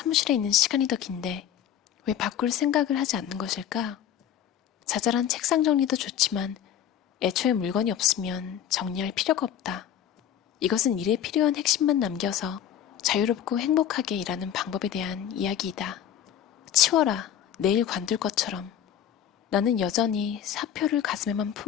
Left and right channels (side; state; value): right; quieter; 10.0 dB